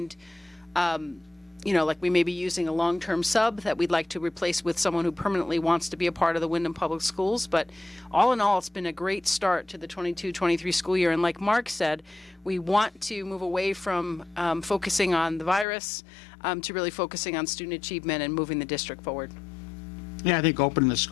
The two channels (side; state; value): right; drops out; at 15.7 s